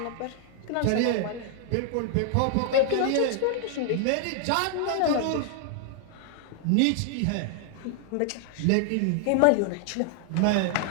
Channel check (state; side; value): different; both; correlation 0.00